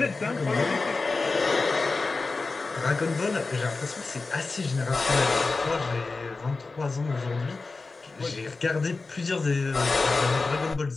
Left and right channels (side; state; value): right; quieter; 3.8 dB